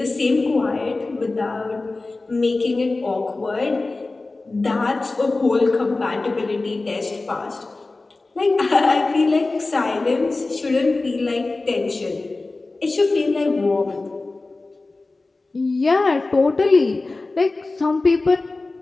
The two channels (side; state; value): right; quieter; 3.4 dB